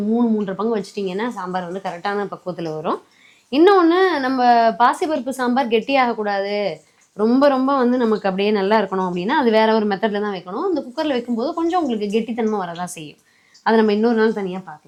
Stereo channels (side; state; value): both; identical; correlation 1.00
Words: 3-3.5 பங்கு வச்சிட்டிங்கன்னா சாம்பார் வந்து கரெக்டான பக்குவத்தில் வரும். இன்னொன்று, நம்ம பாசிப்பருப்பு சாம்பார் கெட்டியாகக்கூடாது, ரொம்ப ரொம்ப வந்து நமக்கு அப்படியே நல்லா இருக்கணும் அப்படின்னா அது வேற ஒரு மெத்தடில் தான் வைக்கணும். இந்த குக்கரில் வைக்கும்போது கொஞ்சம் உங்களுக்கு கெட்டித்தன்மை வரதான் செய்யும். அதை நம்ம இன்னொரு நாள் தனியாக